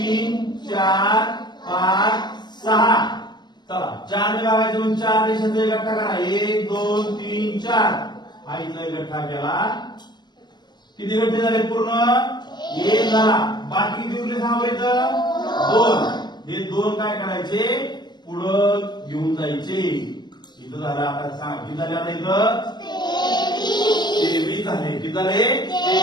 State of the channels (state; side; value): late; right; 0.21 ms